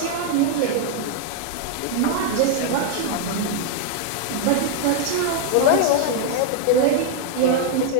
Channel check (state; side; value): different; both; correlation 0.00